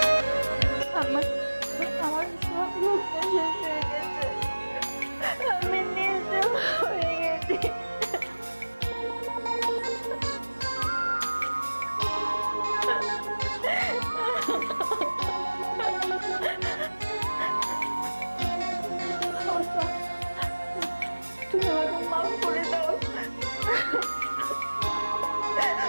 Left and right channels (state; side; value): inverted; both; correlation -1.00